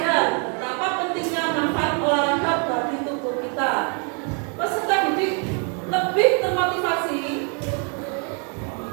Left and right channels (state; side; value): quieter; left; 39.3 dB